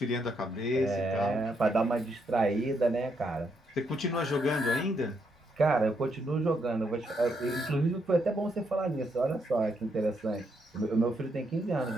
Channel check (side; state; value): both; normal; correlation 0.77